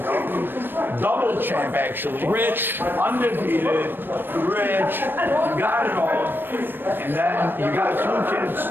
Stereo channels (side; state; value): left; late; 0.096 ms